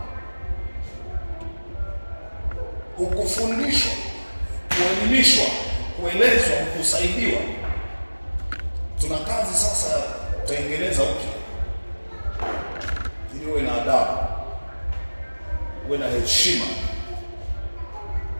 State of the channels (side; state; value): both; inverted; correlation -1.00